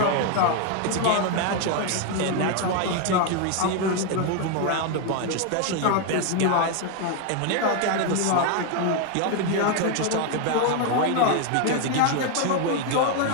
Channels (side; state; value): both; different; correlation 0.01